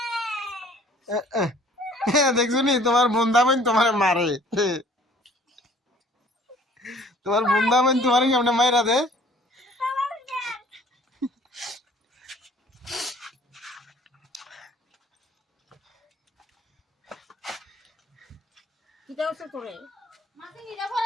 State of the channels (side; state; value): both; normal; correlation 0.54